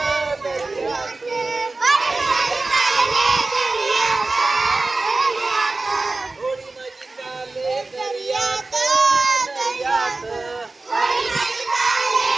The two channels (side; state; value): left; quieter; 3.4 dB